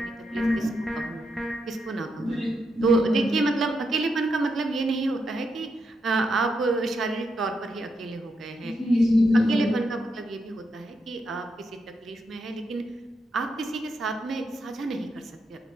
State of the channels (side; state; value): both; normal; correlation 0.82